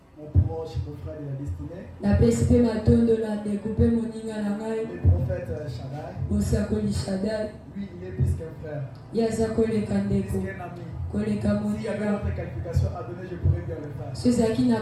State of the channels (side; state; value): both; identical; correlation 1.00